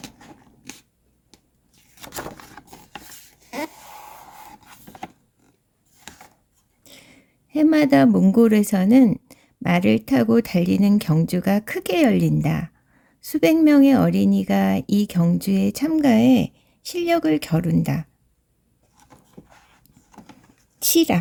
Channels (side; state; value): both; identical; correlation 1.00